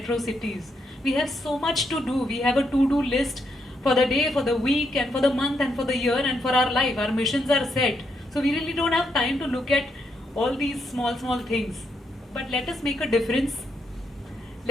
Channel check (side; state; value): both; normal; correlation 0.79